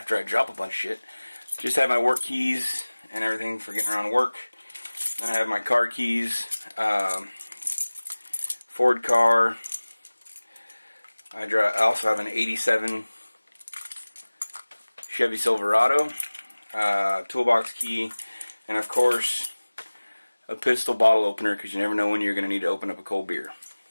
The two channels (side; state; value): both; inverted; correlation -1.00